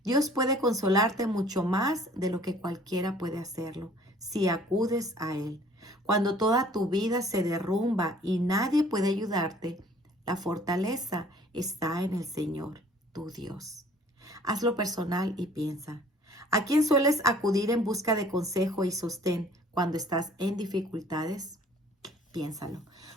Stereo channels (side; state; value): both; normal; correlation 0.54